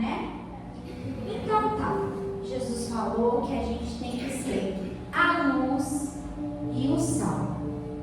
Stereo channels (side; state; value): both; identical; correlation 1.00